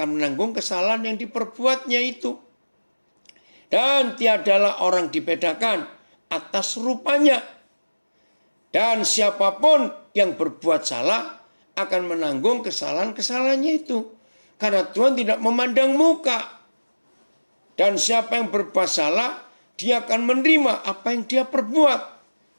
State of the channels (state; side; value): inverted; both; correlation -1.00